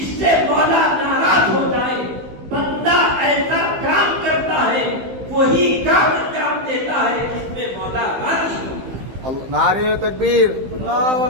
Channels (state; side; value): late; left; 15 ms